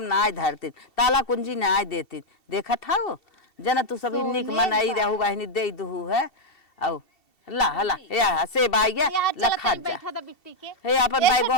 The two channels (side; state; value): right; late; 2.7 ms